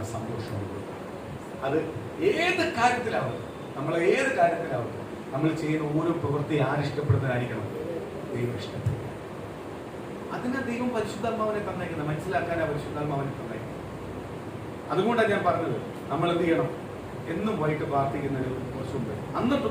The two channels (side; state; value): both; identical; correlation 1.00